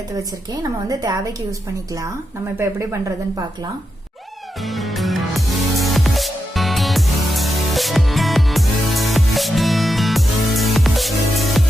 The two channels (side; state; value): both; normal; correlation 0.86